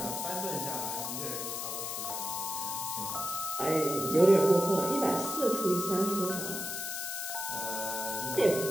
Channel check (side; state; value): left; noise; hiss, 4 dB below the sound